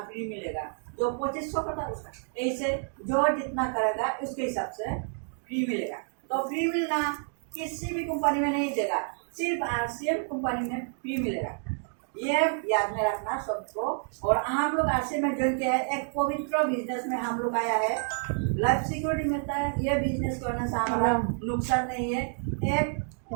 फ्री मिलेगा, जो 2,500 करता है उसका। ऐसे जो जितना करेगा उसके हिसाब से फ्री मिलेगा। तो फ्री मिलना किसी भी कंपनी में नहीं देगा, सिर्फ आरसीएम कंपनी में फ्री मिलेगा। ये याद में रखना सबको। और हम लोग आरसीएम में ज्वाइन किया है, एक पवित्र बिजनेस में हम लोग आया है, लाइफ सिक्योरिटी मिलता है। ये बिजनेस करने से हमारा नुकसान नहीं है। एक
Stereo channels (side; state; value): left; silent; 59 dB below the other